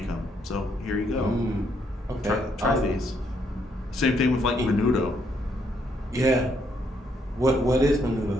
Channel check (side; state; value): both; normal; correlation 0.73